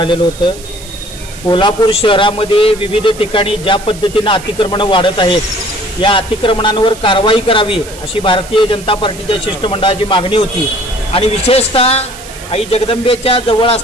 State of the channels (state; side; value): noise; right; hiss, 17 dB below the sound